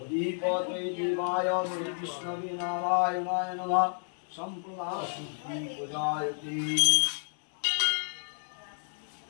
उदीपते देवाय विष्णवे नारायणाय नमः संप्रदाशुद्धि पूजायते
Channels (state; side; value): silent; right; digital silence